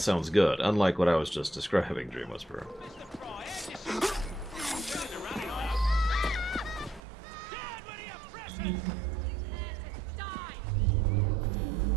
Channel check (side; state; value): left; drops out; at 7.0 s